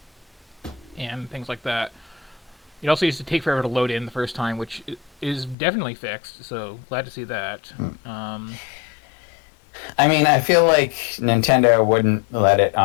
and things like that. It also used to take forever to load in the first time, which is definitely fixed. So glad to see that. I mean, I feel like Nintendo wouldn't let it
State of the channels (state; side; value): drops out; right; at 5.6 s